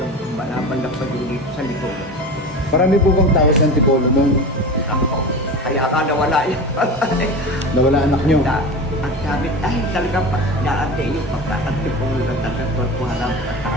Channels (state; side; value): normal; both; correlation 0.30